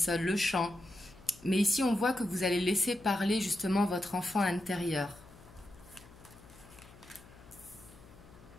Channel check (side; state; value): left; noise; hum, 21 dB below the sound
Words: le chant. Mais ici, on voit que vous allez laisser parler justement votre enfant intérieur.